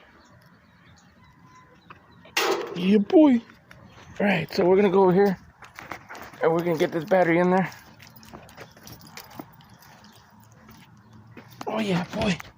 Yeah, boy. Alright, so we're gonna go over here and we're gonna get this battery in there. Oh yeah, boy.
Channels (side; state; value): both; identical; correlation 1.00